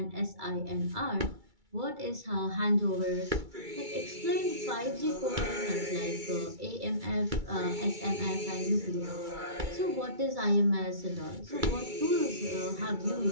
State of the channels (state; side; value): late; left; 2.3 ms